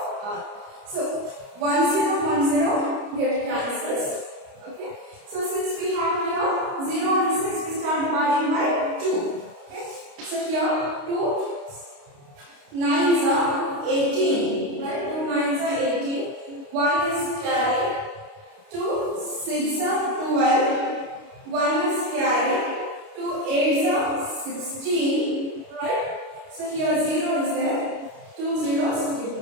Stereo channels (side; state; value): left; late; 29 ms